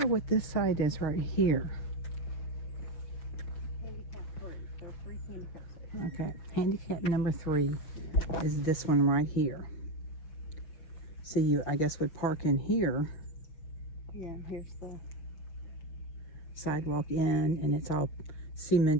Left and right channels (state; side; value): late; right; 6.4 ms